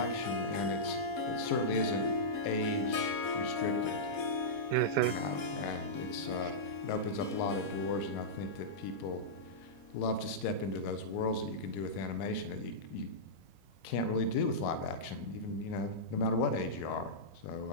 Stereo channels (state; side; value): late; right; 4.2 ms